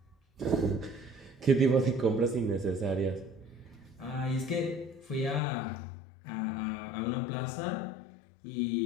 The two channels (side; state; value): right; drops out; at 5.4 s